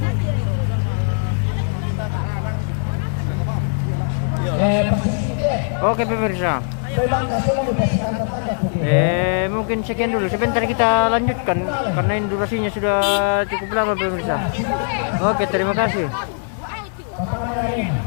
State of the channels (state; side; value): silent; right; digital silence